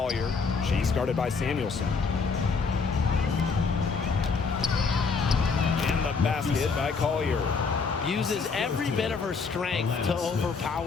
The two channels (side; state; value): right; quieter; 4.9 dB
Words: She's guarded by Samuelson. And the basket by Collier. Uses every bit of her strength to